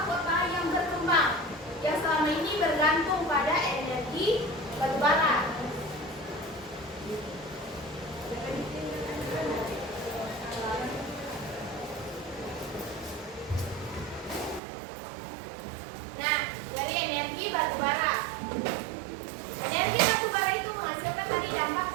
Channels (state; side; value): drops out; left; at 14.6 s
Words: kota yang berkembang, yang selama ini bergantung pada energi batu bara. Nah, dari energi batu bara. Energi batu bara itu menghasilkan tadi dampak